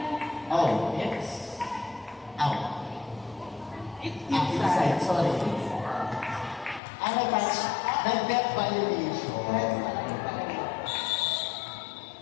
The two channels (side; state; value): right; drops out; at 6.8 s